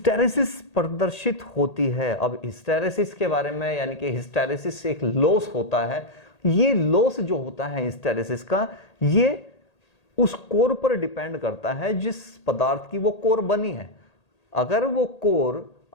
प्रदर्शित होती है। अब हिस्टेरेसिस के बारे में, यानी कि हिस्टेरेसिस एक लॉस होता है। ये लॉस जो होता है हिस्टेरेसिस का, ये उस कोर पर डिपेंड करता है जिस पदार्थ की वो कोर बनी है। अगर वो कोर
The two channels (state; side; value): late; right; 1.8 ms